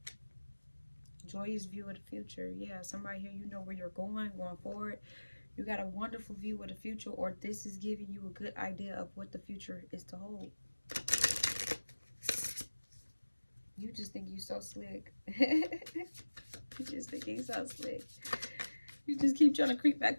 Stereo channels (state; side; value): inverted; both; correlation -1.00